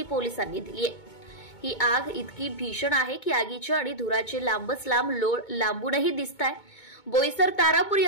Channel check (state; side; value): late; right; 2.2 ms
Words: पोलिसांनी दिली आहे। ही आग इतकी भीषण आहे की आगीचे आणि धुराचे लांबच लांब लोळ लांबूनही दिसताय। बोईसर तारापूर